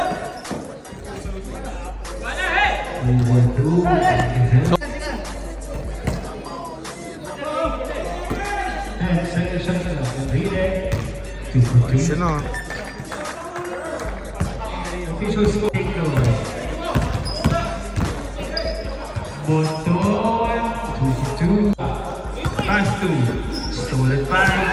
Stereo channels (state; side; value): identical; both; correlation 1.00